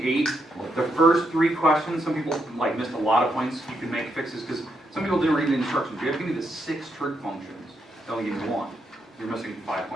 The first 3 questions, some people like missed a lot of points. You can make fixes because some people didn't read the instructions. You have to give me the 6 trig functions. They only give you 1. You're missing 5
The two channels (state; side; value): normal; both; correlation 0.80